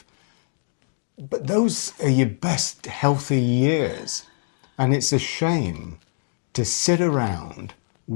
But those are your best healthy years. And it's a shame to sit around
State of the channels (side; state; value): right; silent; 63 dB below the other